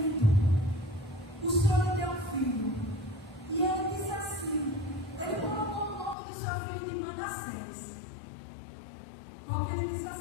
O Senhor lhe deu um filho. E ele disse assim, ele colocou o nome do seu filho de Manassés. Porque ele disse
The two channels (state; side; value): drops out; right; at 6.2 s